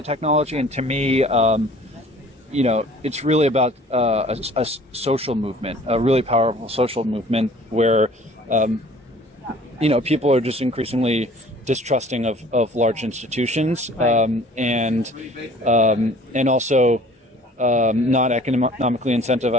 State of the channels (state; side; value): normal; both; correlation 0.51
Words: technology, and to me, it's really about a social movement, a really powerful social movement where, people are just increasingly distrusting of large institutions, and also not economically